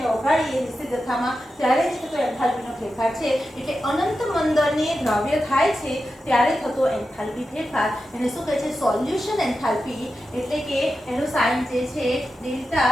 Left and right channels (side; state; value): both; normal; correlation 0.90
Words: ઓગાળીએ નિશ્ચિત જથ્થામાં ત્યારે જ થતો એન્થાલ્પીનો ફેરફાર છે. એટલે અનંત મંદને દ્રાવ્ય થાય છે ત્યારે થતો એન્થાલ્પી ફેરફાર એને શું કહે છે, સોલ્યુશન એન્થાલ્પી. એટલે કે એનું સાઇન જે છે